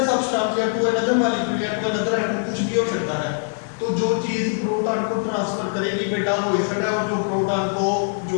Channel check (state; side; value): silent; right; digital silence